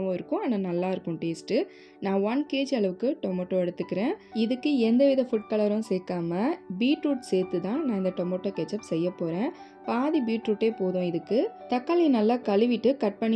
இருக்கும், ஆனால் நல்லாயிருக்கும் டேஸ்ட்டு. நான் 1 kg அளவுக்கு டொமேட்டோ எடுத்துக்கிறேன். இதுக்கு எந்தவித ஃபுட் கலரும் சேர்க்காம பீட்ரூட் சேர்த்து தான் நான் இந்த டொமேட்டோ கெச்சப் செய்ய போகிறேன். பாதி பீட்ரூட்டே போதும் இதுக்கு. தக்காளி நல்லா கழுவிட்டு கட்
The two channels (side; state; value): both; identical; correlation 1.00